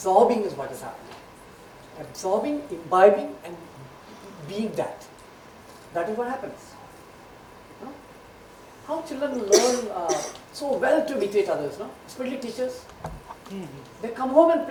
is what is happening. Absorbing, imbibing, and being that. That is what happens. How children learn so well to imitate others, especially teachers. They come home and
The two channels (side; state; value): both; identical; correlation 1.00